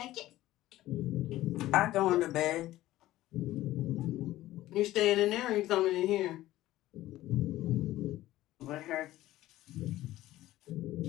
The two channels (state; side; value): quieter; right; 15.5 dB